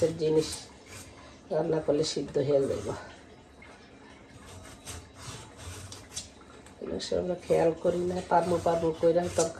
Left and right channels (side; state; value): both; identical; correlation 1.00